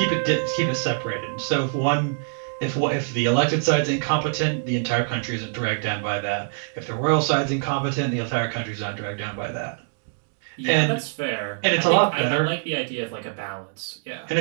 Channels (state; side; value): silent; left; digital silence